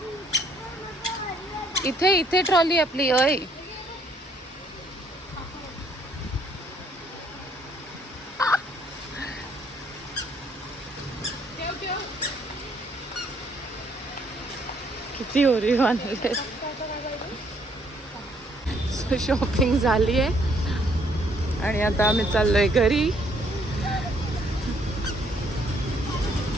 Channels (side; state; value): both; normal; correlation 0.67